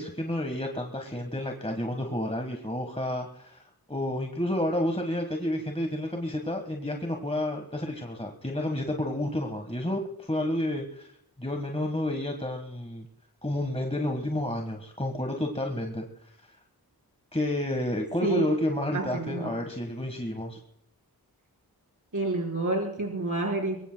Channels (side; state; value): both; normal; correlation 0.56